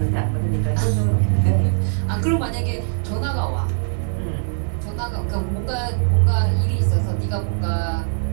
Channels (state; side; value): silent; left; digital silence